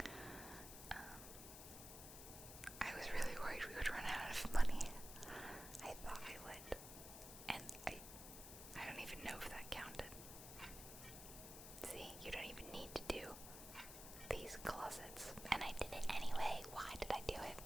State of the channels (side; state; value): left; noise; hiss, 10 dB below the sound